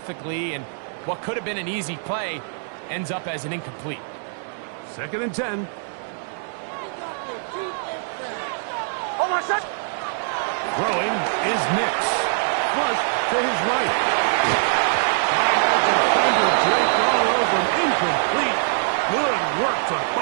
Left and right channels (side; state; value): left; silent; 63 dB below the other